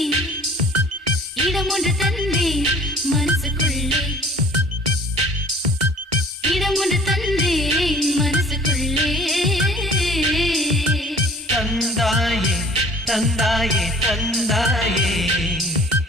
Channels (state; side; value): normal; both; correlation 0.50